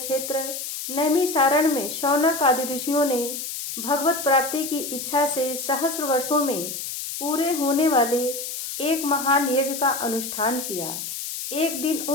नैमिषारण्य में शौनक आदि ऋषियों ने भगवत प्राप्ति की इच्छा से सहस्र वर्षों में पूरे होने वाले एक महान यज्ञ का अनुष्ठान किया। एक दिन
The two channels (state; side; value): noise; left; hiss, 6 dB below the sound